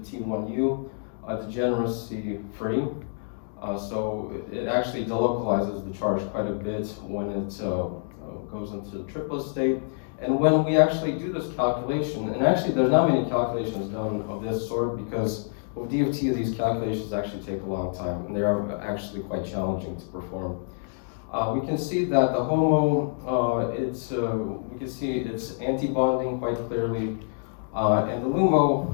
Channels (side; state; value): right; silent; digital silence